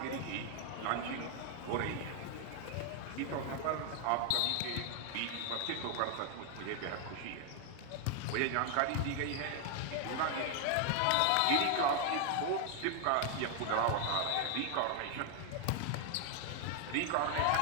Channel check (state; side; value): different; both; correlation 0.00